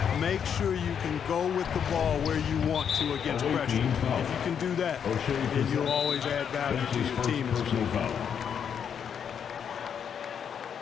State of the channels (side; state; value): right; quieter; 7.8 dB